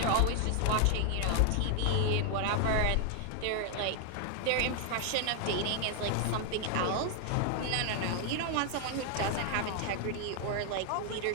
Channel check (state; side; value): different; both; correlation 0.00